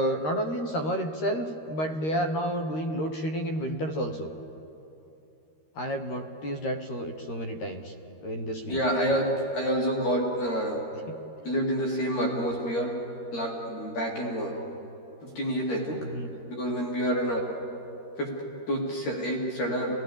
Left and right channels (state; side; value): late; right; 13 ms